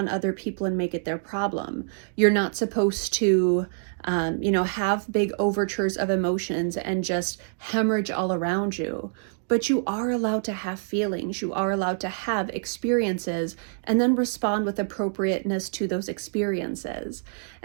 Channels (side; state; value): left; silent; digital silence